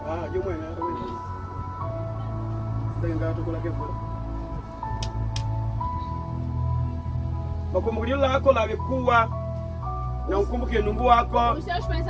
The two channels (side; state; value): both; identical; correlation 1.00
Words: Jumwe na wewe. Ndenga tukula kefu. Makumbukio lako lavikuwa na ukumbuke nungu wako. Os seus